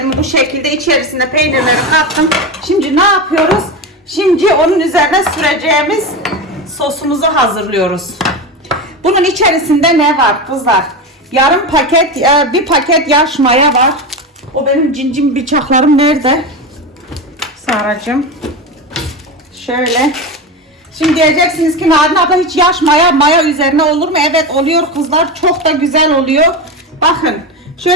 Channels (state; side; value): normal; both; correlation 0.19